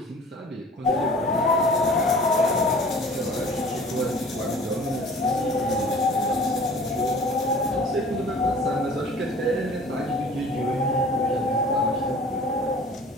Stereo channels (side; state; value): both; normal; correlation 0.46